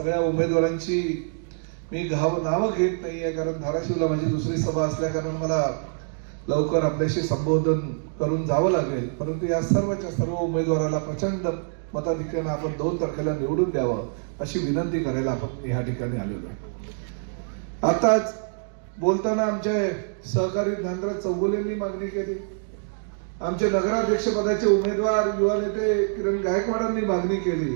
उमेदवारांची मी नावं घेत नाहीये, कारण धाराशिवला माझी दुसरी सभा असल्या कारण मला लवकर आपल्याशी संबोधन करून जावं लागेल। परंतु या सर्वच्या सर्व उमेदवाराला प्रचंड मताधिक्याने आपण 2 तारखेला निवडून द्यावं अशी विनंती करायला आपण या ठिकाणी आलेलो आहे। आताच बोलताना आमचे सहकारी ज्ञानराज चौगुलेंनी मागणी केली, आमचे नगराध्यक्ष पदाचे उमेदवार युवा नेते किरण गायकवाडांनी मागणी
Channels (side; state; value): left; silent; digital silence